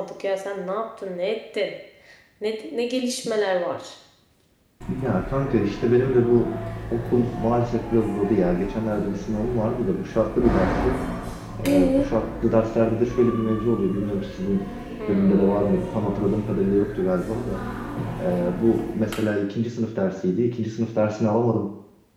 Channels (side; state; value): both; identical; correlation 1.00